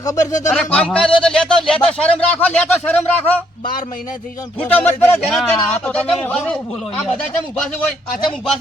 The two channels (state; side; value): normal; both; correlation 0.71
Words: ખબર છે અરે તમને કામકાજ હોય તો લેતો શરમ રાખો લેતો શરમ રાખો 12 મહિના થઈ જાય ફૂટો મત પડે જેના ના, તેના આ આ તો બધા તમે ચમ ઊભા છે? બહુ બોલો આ યાર. બધા ચમ ઊભા છે હોય આ ચમ ઊભા